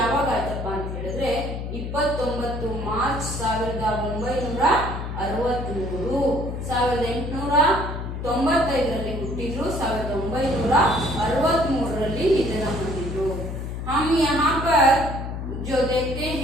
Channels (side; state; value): left; noise; hum, 6 dB below the sound